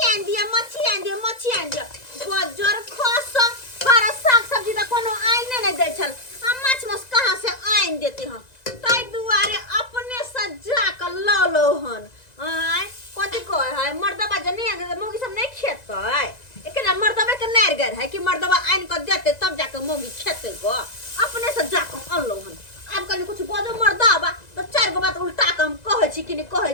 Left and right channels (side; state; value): right; late; 1.9 ms